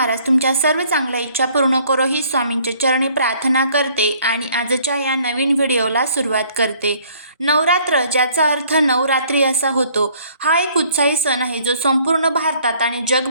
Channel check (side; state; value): both; inverted; correlation -0.60